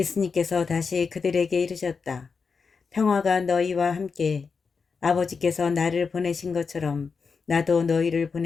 다시 그들에게 이르셨다. 평화가 너희와 함께 아버지께서 나를 보내신 것처럼 나도 너희를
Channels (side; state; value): right; quieter; 5.2 dB